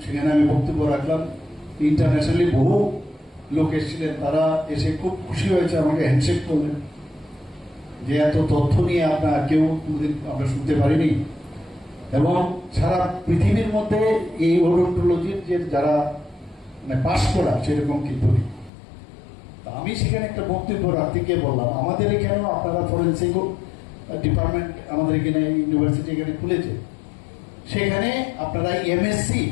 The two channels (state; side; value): drops out; right; at 18.7 s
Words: সেখানে আমি বক্তব্য রাখলাম, ইন্টারন্যাশনালি বহু লোক এসেছিলেন, তারা এসে খুব খুশি হয়েছে, আমাকে হ্যান্ডশেক করলেন যে এত তথ্য নিয়ে আপনার কেউ আমরা শুনতে পারিনি। এবং সারা পৃথিবীর মধ্যে এই ওডোন্টোলজির যে যারা মানে পাশ করা সেরকম কিন্তু নেই। আমি সেখানে একটা বক্তব্য রাখতে গিয়ে বললাম, আমাদের এখানেও আপনারা ফরেন্সিক ডিপার্টমেন্ট আমাদের এখানে ইউনিভার্সিটি এখানে খুলেছে, সেখানে আপনারা এমএসসি